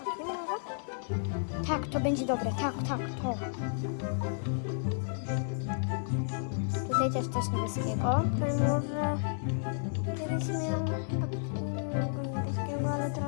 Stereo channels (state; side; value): silent; right; digital silence